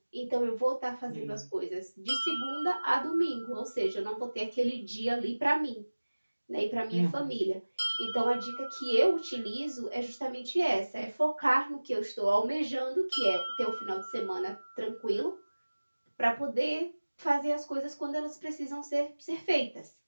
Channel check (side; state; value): both; inverted; correlation -1.00